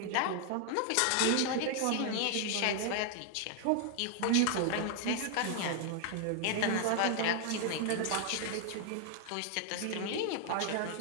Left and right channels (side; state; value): both; different; correlation 0.00